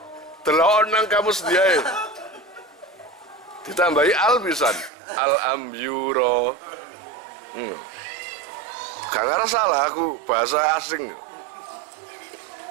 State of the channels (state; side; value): drops out; left; at 4.9 s